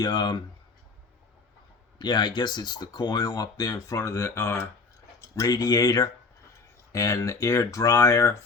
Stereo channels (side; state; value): right; quieter; 4.3 dB